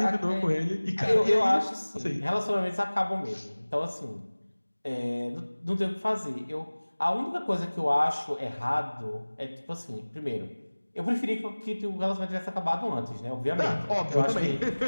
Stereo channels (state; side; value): inverted; both; correlation -1.00